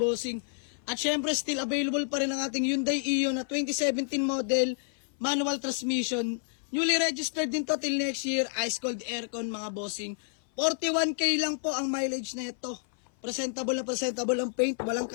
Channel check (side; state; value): right; silent; 56 dB below the other